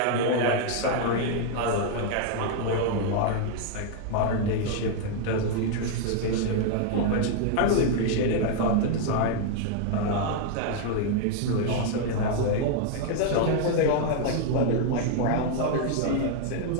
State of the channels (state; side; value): different; both; correlation 0.00